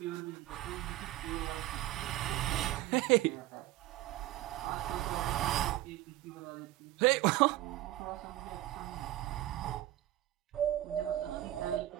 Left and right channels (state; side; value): quieter; left; 15.2 dB